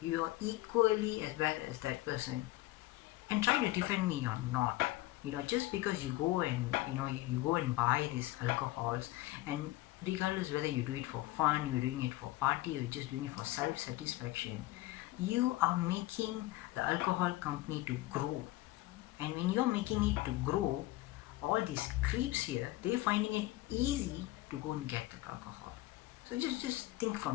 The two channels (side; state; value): right; quieter; 18.2 dB